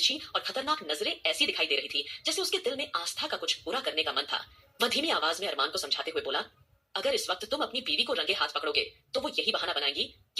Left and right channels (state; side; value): normal; both; correlation 0.96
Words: और खतरनाक नजरें ऐसी दिखाई दे रही थी जैसे उसके दिल में आस्था का कुछ बुरा करने का मन था। वह धीमी आवाज में अरमान को समझाते हुए बोला, अगर इस वक्त तुम अपनी बीवी को रंगे हाथ पकड़ोगे तो वो यही बहाना बनाएगी